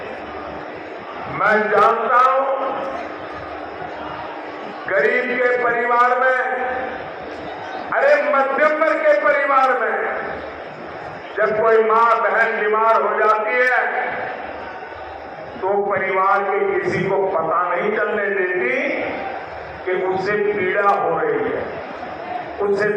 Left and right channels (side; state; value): both; identical; correlation 1.00